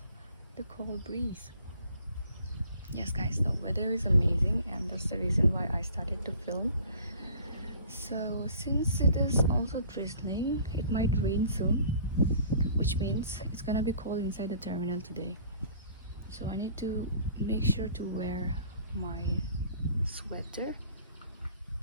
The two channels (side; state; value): both; inverted; correlation -0.51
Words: the cold breeze. Yes guys, the weather is amazing, and that's the reason why I started to film. So since it is also drizzling, it might rain soon, which means it's gonna be cold inside the terminal today. So I need to make sure to wear my sweater.